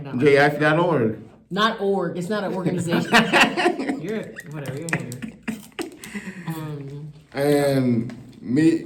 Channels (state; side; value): identical; both; correlation 1.00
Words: not. jife.org. Not org. It's not an organization. You're a hater. And